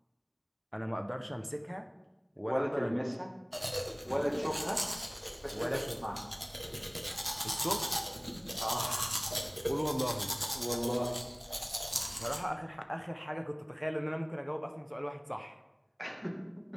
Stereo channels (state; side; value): identical; both; correlation 1.00